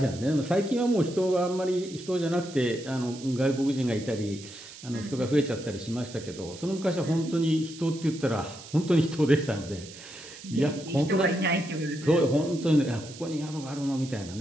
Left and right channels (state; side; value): noise; right; hiss, 16 dB below the sound